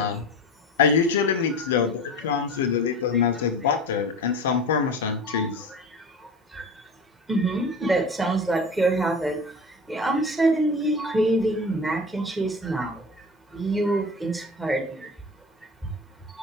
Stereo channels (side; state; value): both; normal; correlation 0.33